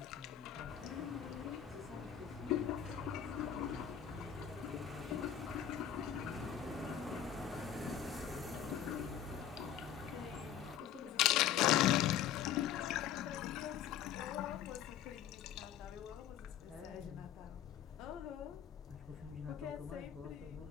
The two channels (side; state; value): right; quieter; 9.8 dB